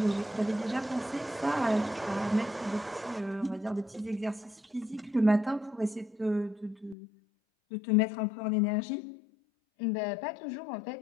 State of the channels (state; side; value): drops out; right; at 7.0 s